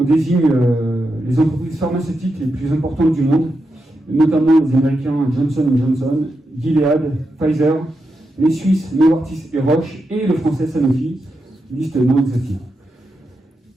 désigne les entreprises pharmaceutiques les plus importantes du monde, notamment les Américains Johnson & Johnson, Gilead, Pfizer, les Suisses Novartis et Roche, et le français Sanofi, liste non exhaustive.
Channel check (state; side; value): normal; both; correlation 0.86